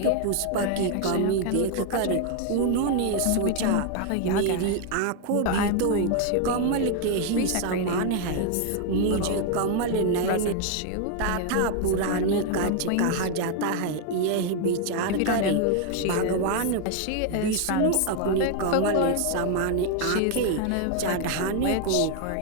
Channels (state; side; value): different; both; correlation 0.00